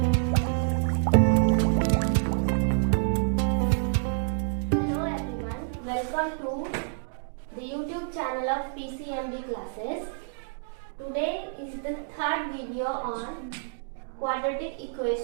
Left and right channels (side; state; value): left; silent; digital silence